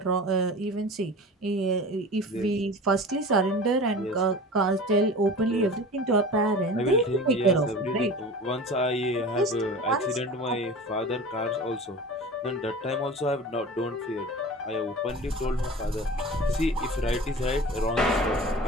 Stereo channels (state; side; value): normal; both; correlation 0.36